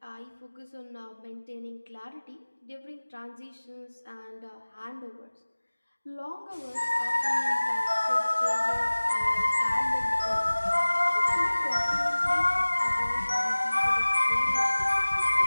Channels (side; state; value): both; inverted; correlation -1.00